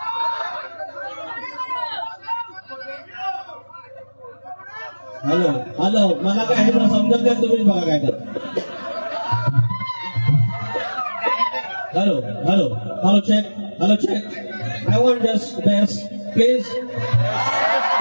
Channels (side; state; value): both; inverted; correlation -1.00